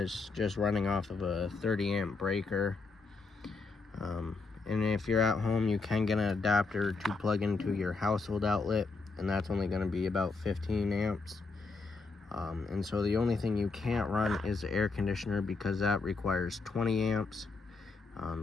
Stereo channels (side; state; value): right; quieter; 4.0 dB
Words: just running off of a 30 amp breaker. And if you're at home, you can get an adapter to plug into your household outlet, and that's only going to be about 15 amps. And so the only thing you can't run is the air conditioner, because that requires 20 amps.